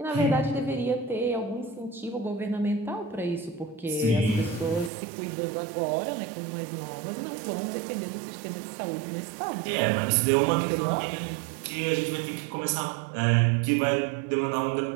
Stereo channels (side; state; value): left; drops out; at 4.9 s